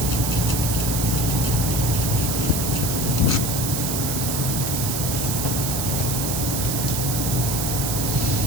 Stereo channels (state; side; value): noise; right; hiss, 2 dB below the sound